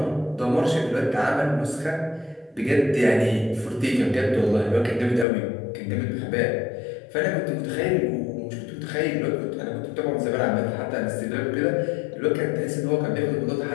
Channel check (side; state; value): right; drops out; at 5.2 s